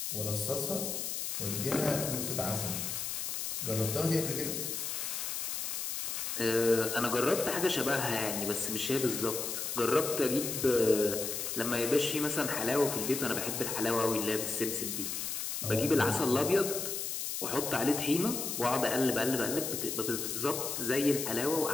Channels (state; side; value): noise; left; hiss, 3 dB below the sound